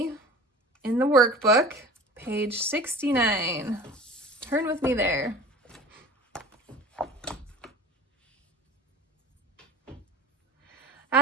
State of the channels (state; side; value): normal; both; correlation 0.41